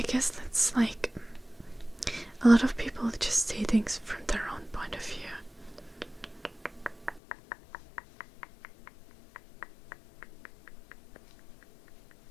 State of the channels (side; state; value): right; drops out; at 7.2 s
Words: guess that's a lot of people just see things from their own point of view.